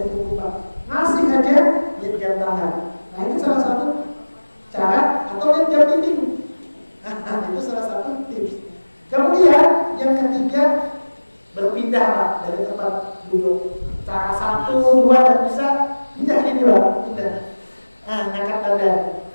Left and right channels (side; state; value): both; inverted; correlation -1.00